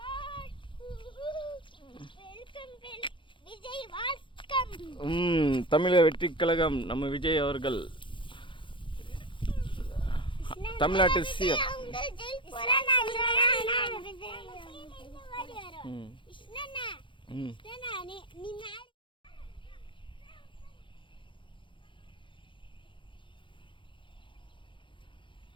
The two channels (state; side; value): late; right; 0.24 ms